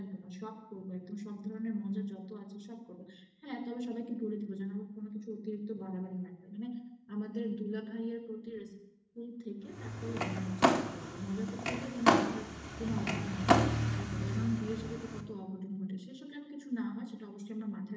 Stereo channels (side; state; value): both; identical; correlation 1.00